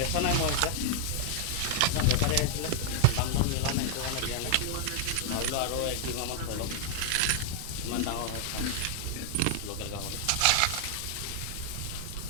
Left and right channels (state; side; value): different; both; correlation 0.00